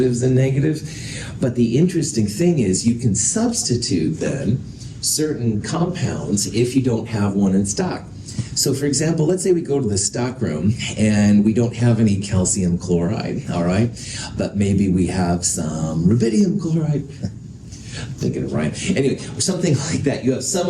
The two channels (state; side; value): identical; both; correlation 1.00